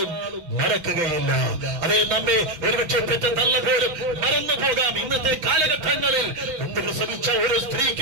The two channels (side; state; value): left; late; 5.9 ms